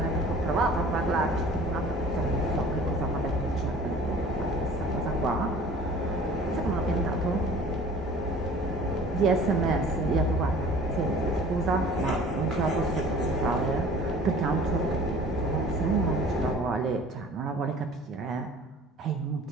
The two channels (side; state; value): both; normal; correlation 0.48